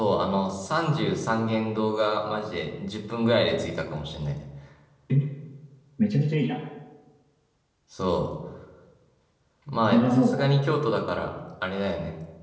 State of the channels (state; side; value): identical; both; correlation 1.00